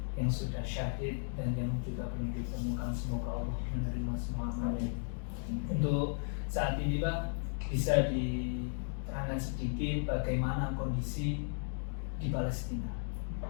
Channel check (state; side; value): silent; right; digital silence